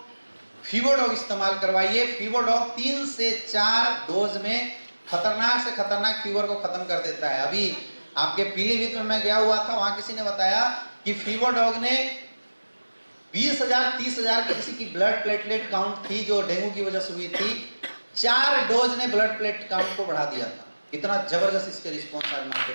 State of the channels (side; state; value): both; inverted; correlation -1.00